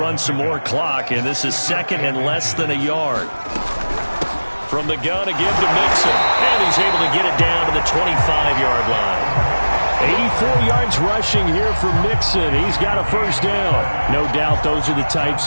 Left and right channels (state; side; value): inverted; both; correlation -1.00